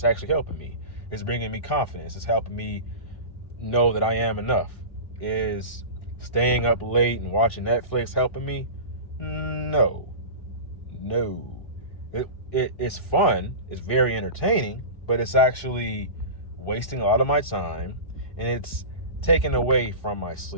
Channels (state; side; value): late; right; 2.6 ms